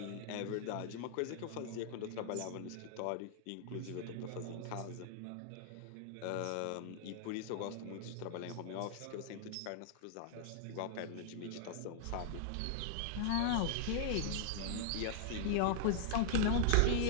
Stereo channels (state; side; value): different; both; correlation -0.01